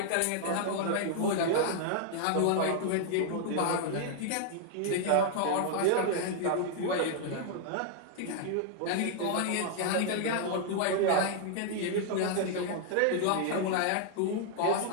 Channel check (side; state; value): both; different; correlation 0.00